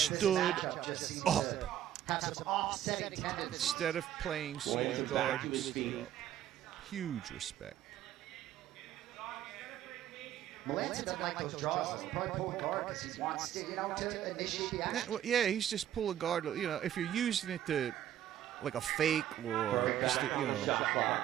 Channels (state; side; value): quieter; left; 11.4 dB